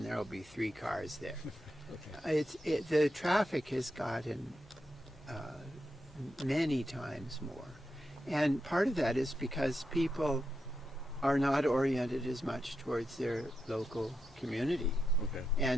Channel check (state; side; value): normal; both; correlation 0.86